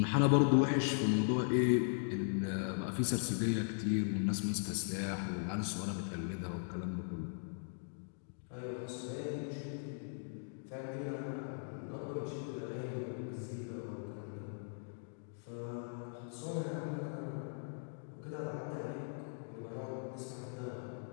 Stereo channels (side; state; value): right; silent; digital silence